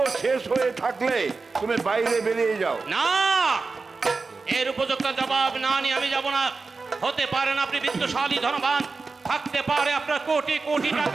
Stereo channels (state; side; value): quieter; left; 4.2 dB